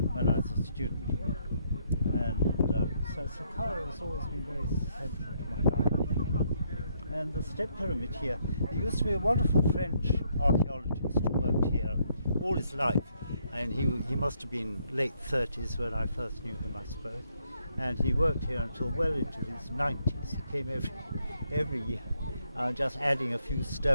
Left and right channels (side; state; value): both; inverted; correlation -0.73